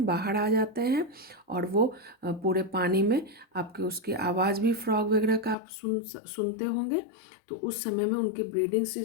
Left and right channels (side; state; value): right; drops out; at 5.6 s